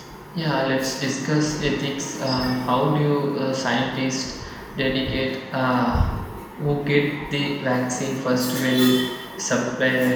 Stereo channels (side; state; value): both; identical; correlation 1.00